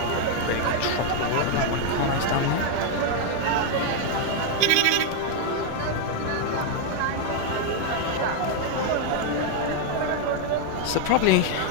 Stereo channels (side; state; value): both; different; correlation 0.00